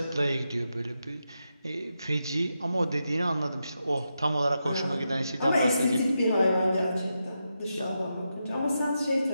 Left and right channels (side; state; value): both; inverted; correlation -0.86